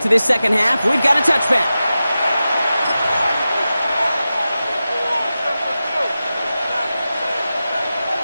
to this second half. We've got a touchback.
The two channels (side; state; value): both; inverted; correlation -0.93